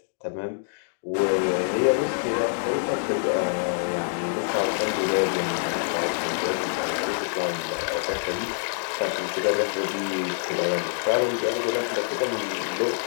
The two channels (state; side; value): silent; right; digital silence